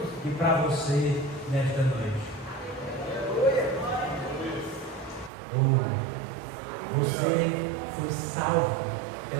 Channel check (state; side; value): drops out; left; at 5.3 s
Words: e para você nesta noite. Você foi salvo